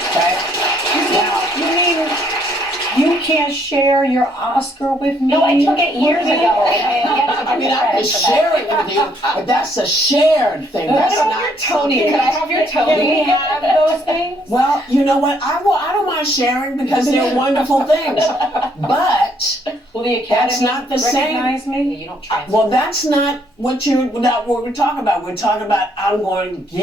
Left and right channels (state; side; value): normal; both; correlation 0.68